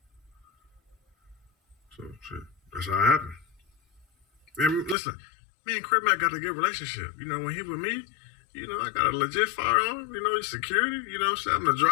So, shit, that's how it happened. And listen, me and CripMac got a good relationship. You know, when he with me, you know, I got a legit firearm. You know, he's security. You know what I'm saying? I'm the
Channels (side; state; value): right; drops out; at 5.0 s